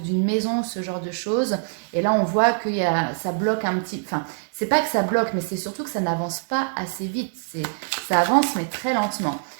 maison, ce genre de choses. Et là, on voit que ça bloque un petit... Enfin, c'est pas que ça bloque, mais c'est surtout que ça n'avance pas assez vite. Ça avance, mais très lentement.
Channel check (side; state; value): left; silent; digital silence